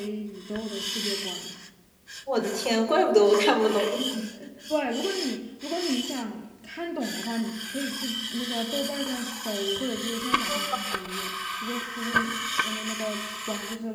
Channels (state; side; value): identical; both; correlation 1.00